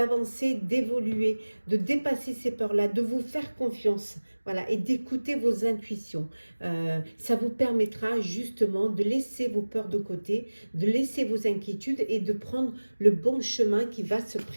d'évoluer, de dépasser ces peurs-là, de vous faire confiance, voilà, et d'écouter vos intuitions. Ça vous permettra justement de laisser vos peurs de côté, de laisser vos inquiétudes et de prendre le bon chemin qui va se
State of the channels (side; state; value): both; inverted; correlation -1.00